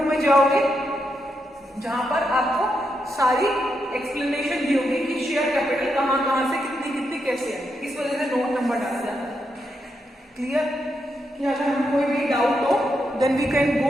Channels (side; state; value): both; normal; correlation 0.83